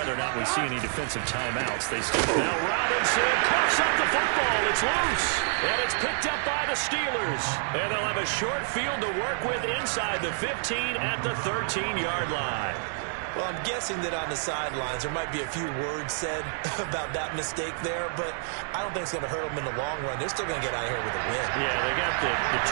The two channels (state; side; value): silent; left; digital silence